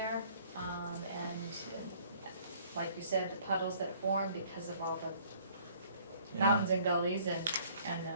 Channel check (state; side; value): inverted; both; correlation -0.58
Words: and like you said, the puddles that form because of all the Yeah. mountains and gullies and